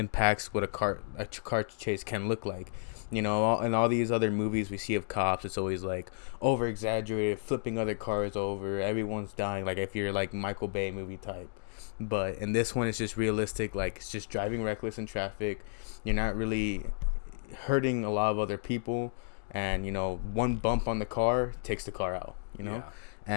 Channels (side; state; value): right; silent; digital silence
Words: what a car chase can look like. In all these other movies we see of cops, it's always like over exaggerated, flipping other cars over, everyone's dying, like if you're like Michael Bay movie type. But in this one, it's just realistic. Like, it's just driving reckless in traffic. You're not really hurting a lot of other people, and one bump on the car takes the car out. Yeah.